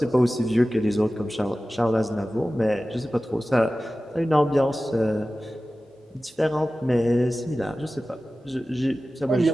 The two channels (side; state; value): both; normal; correlation 0.96